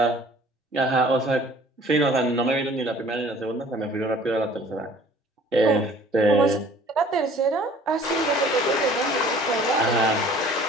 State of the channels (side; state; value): both; normal; correlation 0.51